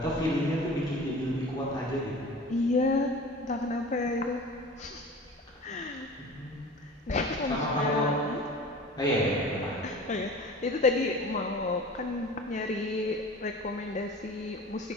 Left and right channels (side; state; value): both; normal; correlation 0.39